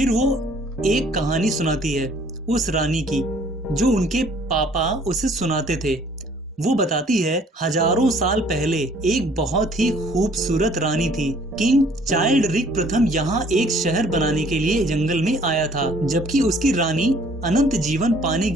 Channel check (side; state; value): both; normal; correlation 0.58